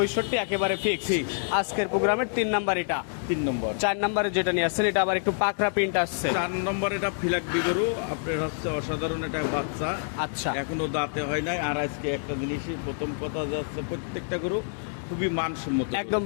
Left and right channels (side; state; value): right; silent; digital silence